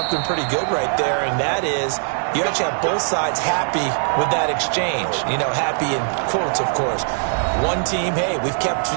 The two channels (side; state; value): left; silent; digital silence